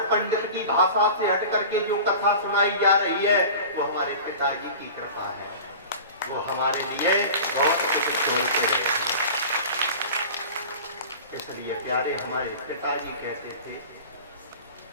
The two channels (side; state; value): both; inverted; correlation -0.36